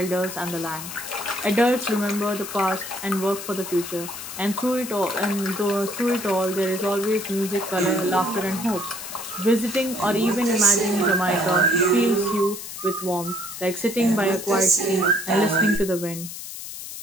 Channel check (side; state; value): left; noise; hiss, 10 dB below the sound